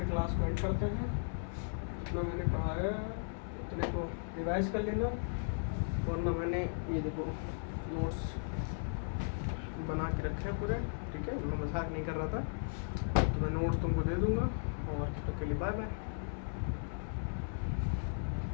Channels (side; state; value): right; silent; 54 dB below the other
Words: क्लास को एंड करते हैं। जितना मैंने पढ़ाया उतने को रिवाइज कर लेना, वरना मैंने ये देखो नोट्स बना के रखे हैं पूरे, ठीक है। मैं मजाक नहीं कर रहा था, तो मैं नोट्स तुमको दे दूंगा। और तब तक के लिए बाय बाय।